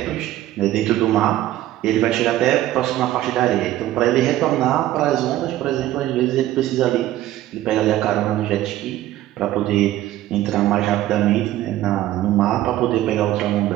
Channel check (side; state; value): left; quieter; 14.2 dB